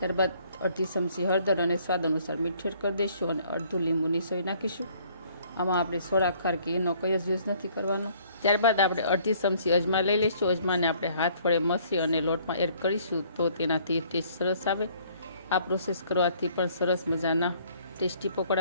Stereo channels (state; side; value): inverted; both; correlation -0.60